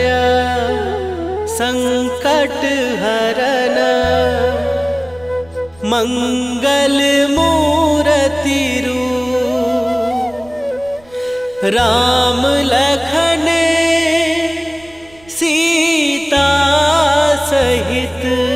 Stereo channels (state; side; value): noise; right; rumble, 27 dB below the sound